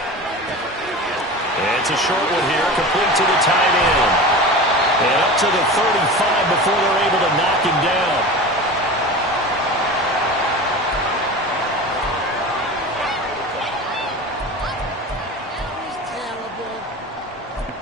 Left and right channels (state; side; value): normal; both; correlation 0.32